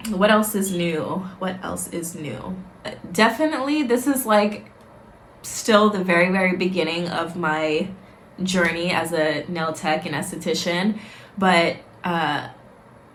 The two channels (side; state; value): both; identical; correlation 1.00